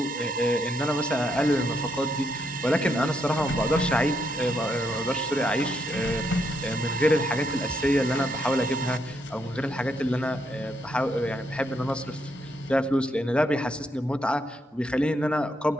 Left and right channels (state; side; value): normal; both; correlation 0.77